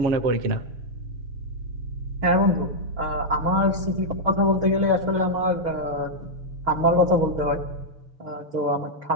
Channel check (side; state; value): left; late; 6.6 ms